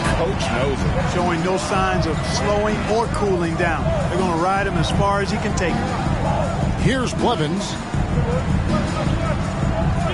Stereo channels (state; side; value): identical; both; correlation 1.00